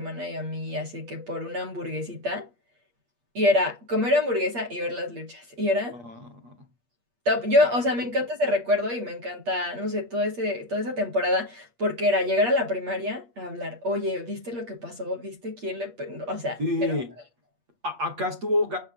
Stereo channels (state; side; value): late; left; 8.4 ms